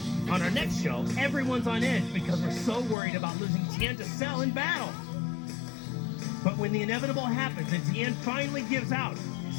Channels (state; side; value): drops out; right; at 3.0 s